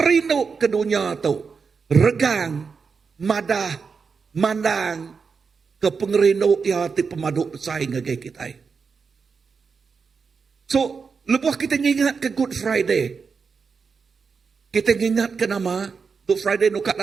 rino ke dunia tu regang madah mandang ke pengerino ya ti pemadu saing ngagai kita. So, lepas kita ingat ke Good Friday. Kita ingat ke nama Good Friday nukat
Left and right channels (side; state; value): left; quieter; 5.4 dB